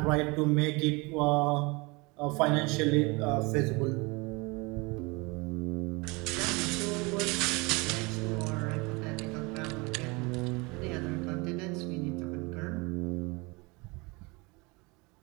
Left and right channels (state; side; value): quieter; left; 26.6 dB